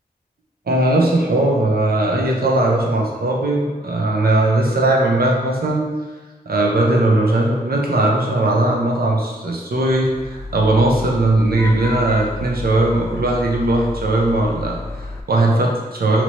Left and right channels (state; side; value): normal; both; correlation 0.65